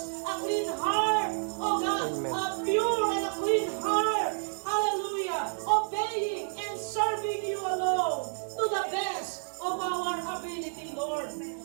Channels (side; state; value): left; silent; 58 dB below the other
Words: a clean heart, oh God, Amen. a pure and a clean heart. Hallelujah. Obeying and serving you alone to the best of our ability, Lord.